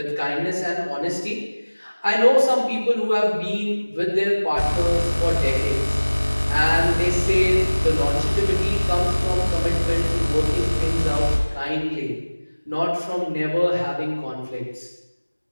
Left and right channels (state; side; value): inverted; both; correlation -1.00